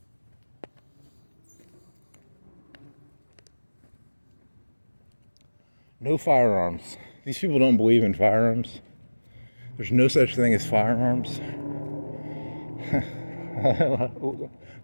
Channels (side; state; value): both; inverted; correlation -1.00